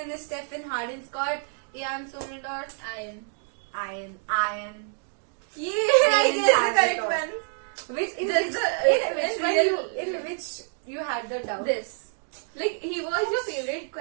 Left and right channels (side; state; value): left; silent; 60 dB below the other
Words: Stephen Harden, Scott, Ian Somerdorf, Ian. yeah, I guess the correct Ian one. Which in Just which, the- in which you had the doubt. This. Like, he was your favorite